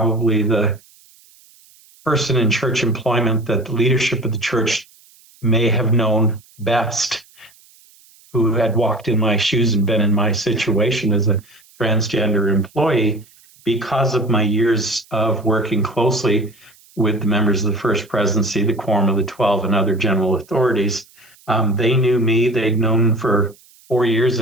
the person in church employment that the leadership of the church may have known best, who had walked in my shoes and been in my situation as a transgender employee because of my years of working closely with the members of the First Presidency, the Quorum of the 12, and other general authorities. They knew me. They'd known for 4 years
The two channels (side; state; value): right; noise; hiss, 28 dB below the sound